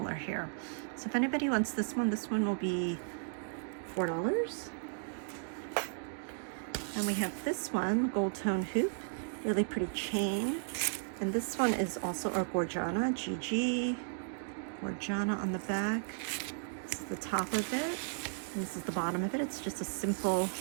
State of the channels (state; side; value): silent; left; digital silence